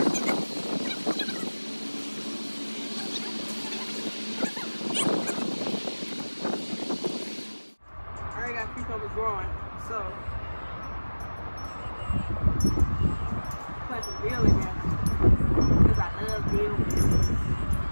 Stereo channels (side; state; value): both; inverted; correlation -1.00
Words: I already got cucumbers growing, so plant some dill in there because I love dill.